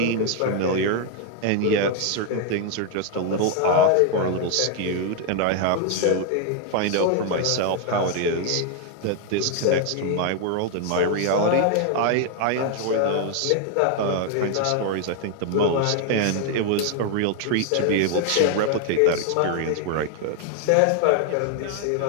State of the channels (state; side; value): different; both; correlation 0.00